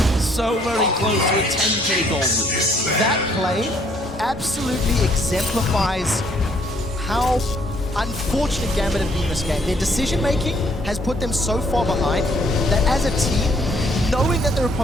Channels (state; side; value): normal; both; correlation 0.65